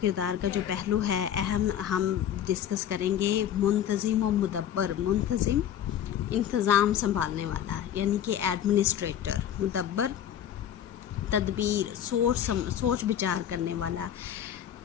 का जो पहलू है अहम, हम डिस्कस करेंगे मुंतज़िम व मुदब्बर। मुंतज़िम इंतज़ाम संभालने वाला, यानी कि एडमिनिस्ट्रेटर। मुदब्बर तदबीर, सोच विचार करने वाला,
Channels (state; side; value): quieter; right; 10.1 dB